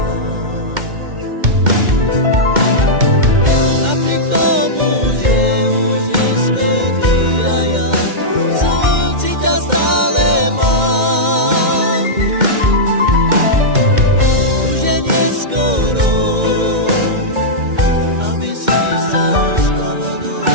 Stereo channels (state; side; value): late; left; 2.1 ms